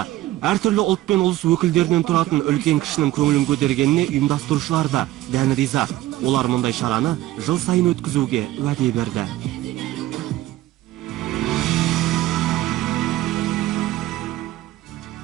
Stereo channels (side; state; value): left; quieter; 15.5 dB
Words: Әртүрлі ұлт пен ұлыс өкілдерінен тұратын үлкен кішінің көңілін көтергеніне ұйымдастырушылар да дән риза. Олар мұндай шараны жыл сайын өткізуге уәде берді.